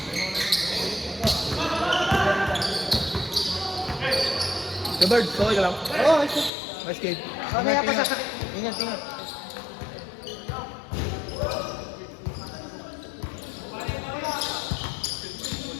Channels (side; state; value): right; drops out; at 6.5 s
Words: Bird, okay ka lang? Oo, ito. Nice game. Mamaya pa sasakit. Ingat, ingat.